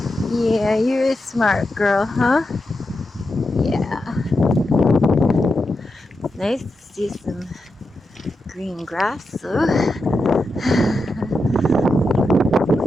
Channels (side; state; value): both; normal; correlation 0.87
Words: Yeah, you're a smart girl, huh? Yeah. It's nice to see some green grass, though.